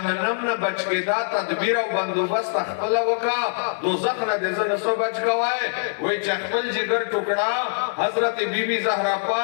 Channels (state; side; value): silent; right; digital silence